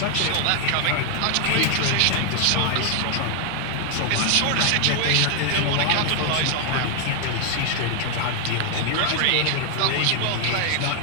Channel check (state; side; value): different; both; correlation 0.00